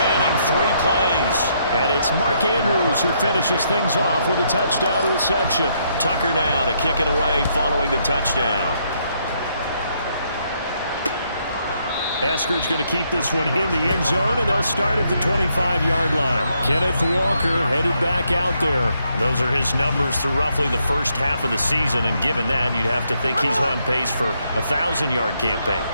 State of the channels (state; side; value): inverted; both; correlation -0.74